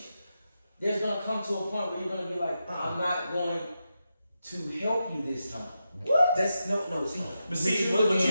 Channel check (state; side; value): inverted; both; correlation -0.88